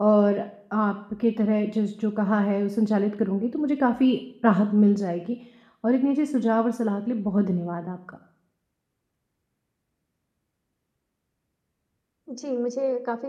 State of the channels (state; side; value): identical; both; correlation 1.00